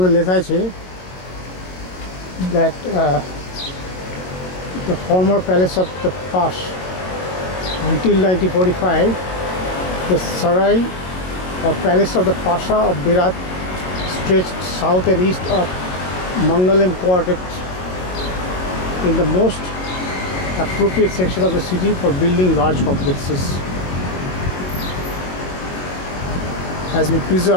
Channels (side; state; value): right; late; 22 ms